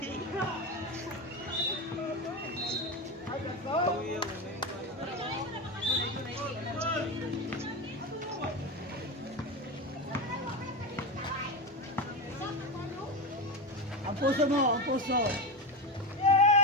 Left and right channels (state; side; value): normal; both; correlation 0.18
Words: Ang puso mo, ang puso.